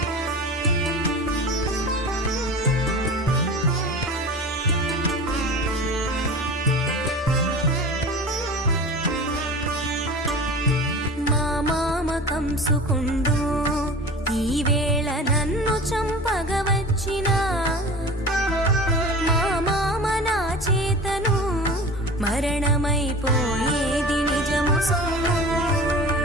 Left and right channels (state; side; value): normal; both; correlation 0.36